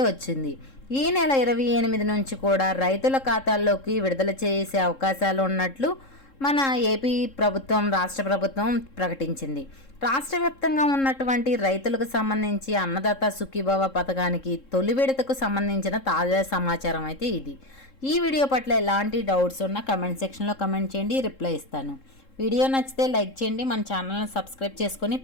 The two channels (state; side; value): late; right; 3.7 ms